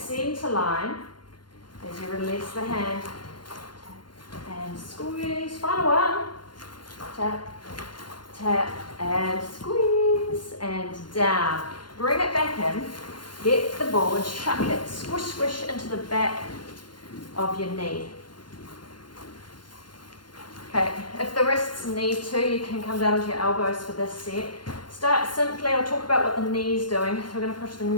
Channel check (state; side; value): late; right; 0.71 ms